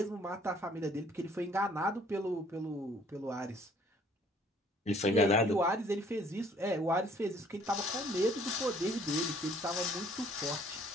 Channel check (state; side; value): normal; both; correlation 0.59